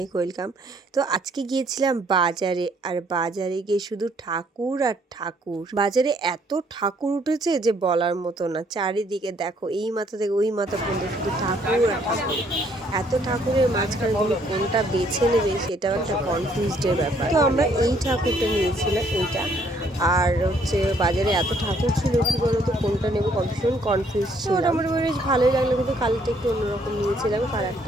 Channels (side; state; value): both; normal; correlation 0.66